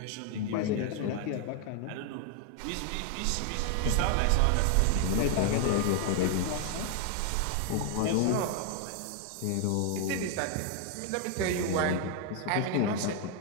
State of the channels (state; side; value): different; both; correlation 0.00